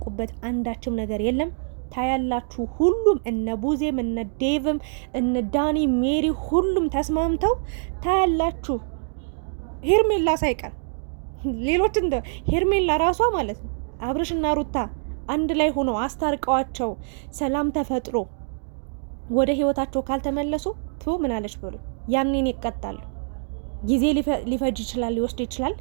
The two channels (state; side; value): silent; left; digital silence